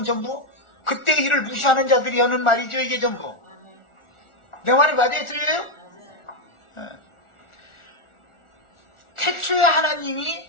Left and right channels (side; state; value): right; late; 1.4 ms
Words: 전부 그때의 일을 무시하는 자들이 하는 말이죠. 이게 전부. 내 말이 맞아요? 틀려요? 태초에 하나님이